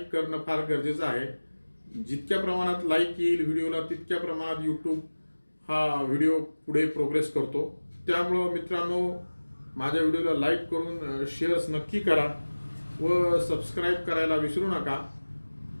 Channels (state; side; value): inverted; both; correlation -1.00